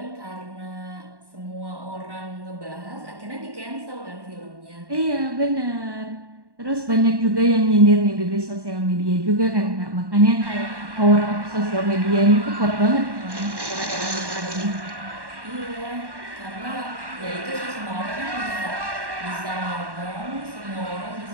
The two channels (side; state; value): left; late; 1.1 ms